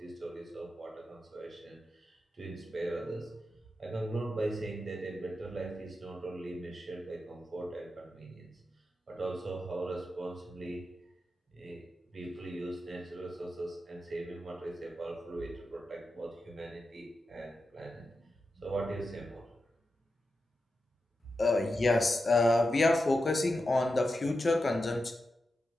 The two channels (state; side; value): normal; both; correlation 0.89